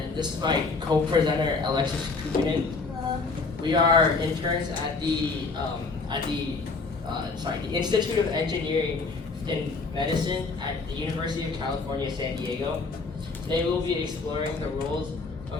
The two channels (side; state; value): right; quieter; 4.1 dB